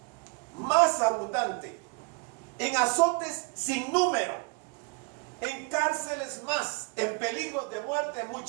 más abundante, en azotes sin número, en cárceles más, en peligros de muerte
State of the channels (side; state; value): left; quieter; 32.2 dB